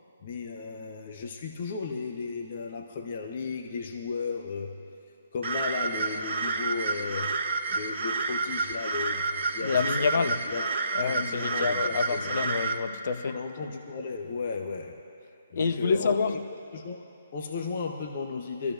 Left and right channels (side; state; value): both; inverted; correlation -0.70